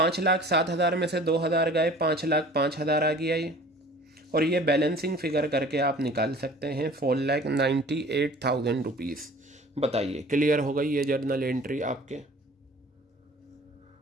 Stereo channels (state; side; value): normal; both; correlation 0.47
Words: में से 2,000 गए, 5,05,000 आ गया ये। और ये बैलेंसिंग फिगर करके आप निकाल सकते हैं 4,98,000 रुपीज़। बताइए क्लियर हो गई ये जर्नल एंट्री आपके।